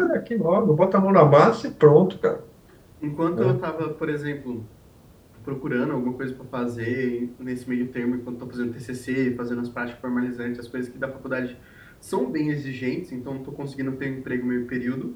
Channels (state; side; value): identical; both; correlation 1.00